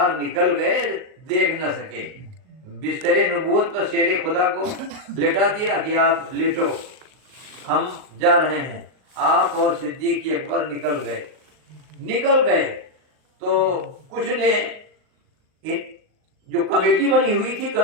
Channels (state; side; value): late; left; 38 ms